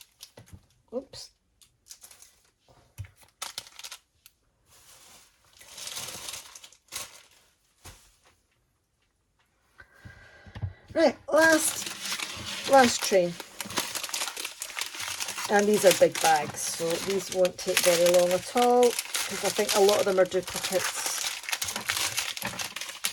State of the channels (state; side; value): identical; both; correlation 1.00